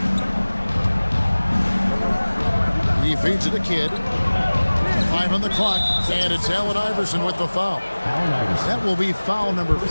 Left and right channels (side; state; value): both; inverted; correlation -1.00